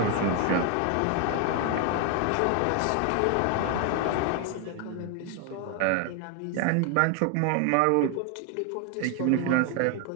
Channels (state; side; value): different; both; correlation 0.01